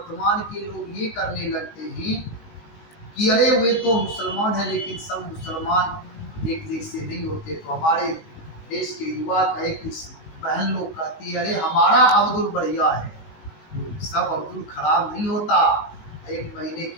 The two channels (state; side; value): late; right; 19 ms